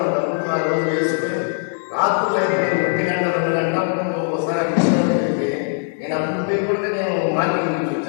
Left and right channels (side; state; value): right; silent; 63 dB below the other